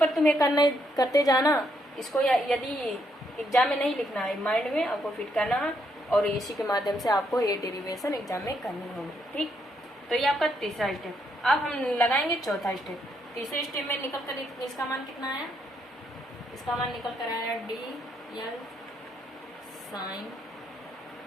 तुम्हें करते जाना, इसको यदि एग्जाम में नहीं लिखना है, माइंड में आपको फिट करना है, और इसी के माध्यम से आपको ये डेरिवेशन एग्जाम में करनी होगी, ठीक। तो ये आपका तीसरा स्टेप। अब हम लगाएंगे चौथा स्टेप। तीसरे स्टेप में निकल कर इसका मान कितना आया, इसका मान निकल कर आया DL साइन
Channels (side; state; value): both; normal; correlation 0.75